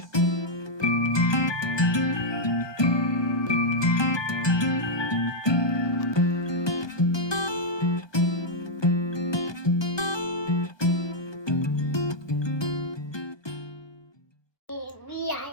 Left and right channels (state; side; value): late; right; 1.2 ms